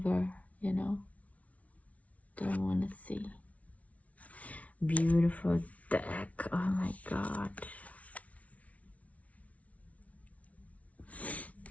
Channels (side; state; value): right; late; 0.067 ms